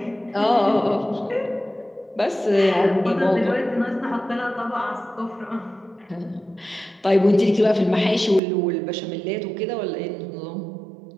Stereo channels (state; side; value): drops out; left; at 8.4 s